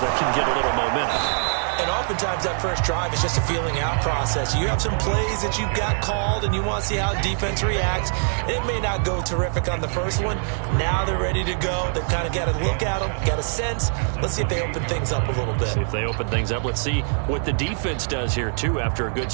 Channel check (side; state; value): left; silent; 63 dB below the other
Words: can get a little momentum. And oftentimes that first drive is just a feeling out process. You have some plays that you've got called and you want to see how defense reacts. It may not go terrific on the first one. Now they're ready to go. They've kind of got to look at them, got a sense. Let's see if they open things up a little bit. See if they open things up. Let's see what the defense does here, too, after a good